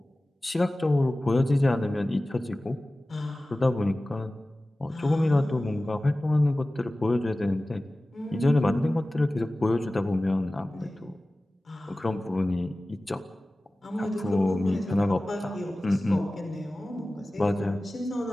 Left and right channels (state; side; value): normal; both; correlation 0.97